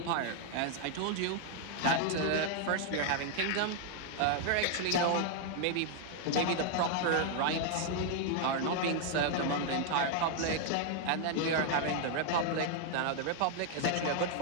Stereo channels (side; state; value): both; different; correlation 0.00